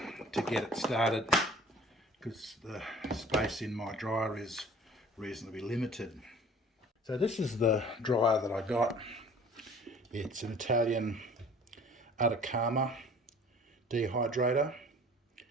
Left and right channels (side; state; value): both; normal; correlation 0.48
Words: to get it started because the space in my dryer is reasonably limited. So this is the dryer that I got. It's an Italian Atacama dehydrator,